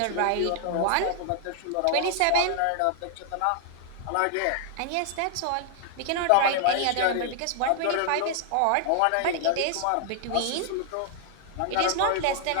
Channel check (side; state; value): both; different; correlation 0.00